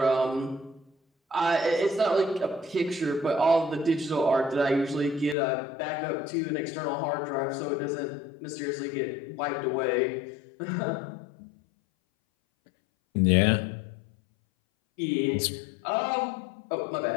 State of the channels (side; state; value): right; drops out; at 5.4 s